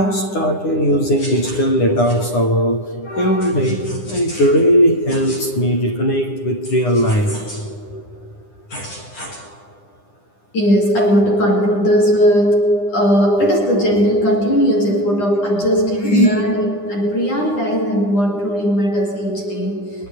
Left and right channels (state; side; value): late; right; 9.9 ms